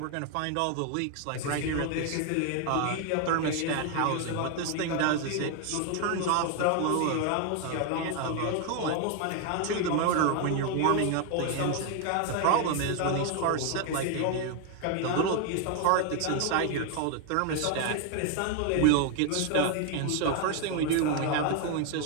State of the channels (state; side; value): different; both; correlation 0.01